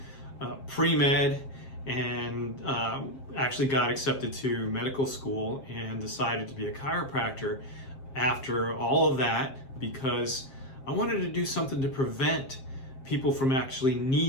pre-med and actually got accepted to medical school and decided to be a chiropractor after all of that because I wanted to do something to prevent people from actually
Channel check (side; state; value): right; late; 7.5 ms